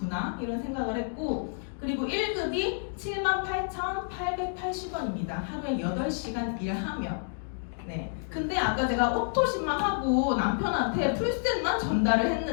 이런 생각을 했고, 그리고 1급이 78,880원입니다. 하루에 8시간 일하면. 네. 근데 아까 제가 오토십만 하고 남편한테 풀셋만 전달을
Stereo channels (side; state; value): right; silent; digital silence